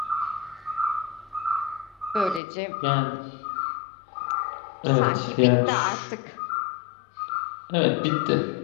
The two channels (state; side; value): drops out; right; at 2.4 s